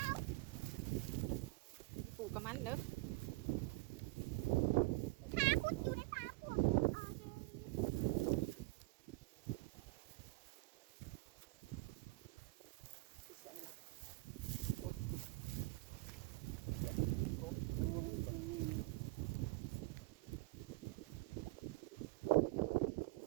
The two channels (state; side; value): quieter; left; 23.1 dB